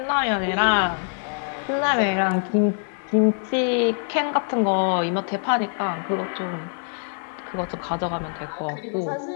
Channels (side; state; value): right; silent; 61 dB below the other